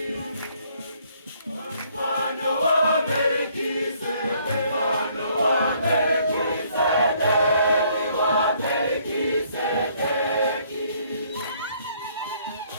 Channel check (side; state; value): both; inverted; correlation -0.65